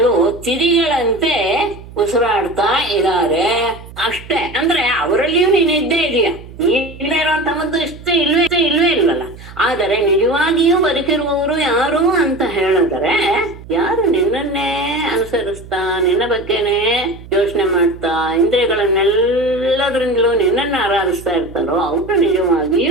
ತಿದಿಗಳಂತೆ ಉಸಿರಾಡ್ತಾ ಇದ್ದಾರೆ ಅಷ್ಟೇ. ಅಂದ್ರೆ ಅವರಲ್ಲಿಯೂ ನೀನು ಇದ್ದೇ ಇದೆಯಾ, ನೀನೇ ಇರುವಂತಹದ್ದು ಇಲ್ವೇ ಇಲ್ವಲ್ಲ. ಆದರೆ ನಿಜವಾಗಿಯೂ ಬದುಕಿರುವವರು ಯಾರು ಅಂತ ಹೇಳಿದ್ರೆ, ಯಾರು ನಿನ್ನನ್ನೇ ಅನುಸರಿಸ್ತಾ, ನಿನ್ನ ಬಗ್ಗೆನೇ ಯೋಚನೆ ಮಾಡ್ತಾ, ಇಂದ್ರಿಯಗಳನ್ನೆಲ್ಲದ್ರಿಂದಲೂ ನಿನ್ನನ್ನ ಆರಾಧಿಸ್ತಾ ಇರ್ತಾರೋ ಅವರು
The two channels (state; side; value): noise; right; hum, 17 dB below the sound